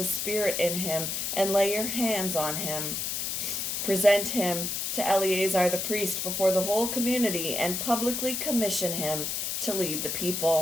Spirit in him, and lay your hands on him. Present him to Eleazar the priest before the whole community and publicly commission him to lead the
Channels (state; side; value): noise; left; hiss, 2 dB below the sound